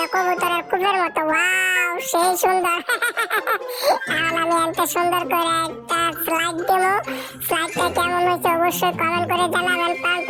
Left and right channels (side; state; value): both; identical; correlation 1.00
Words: কবুতরের কুপের মতো, ওয়াও সেই সুন্দর। এখন আমি এত সুন্দর করে একটা স্লাইড দেবো। স্লাইডটা কেমন হয়েছে অবশ্যই কমেন্ট করে জানাবেন। প্রাণ